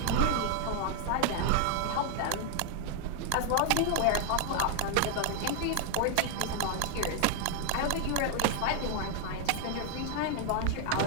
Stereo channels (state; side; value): different; both; correlation 0.00